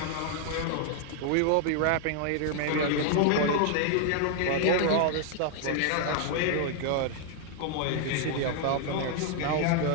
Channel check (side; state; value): both; different; correlation 0.00